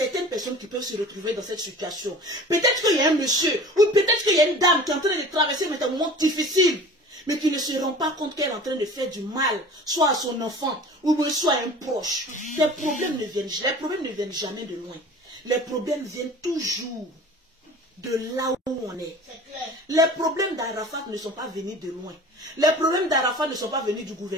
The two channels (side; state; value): both; normal; correlation 0.42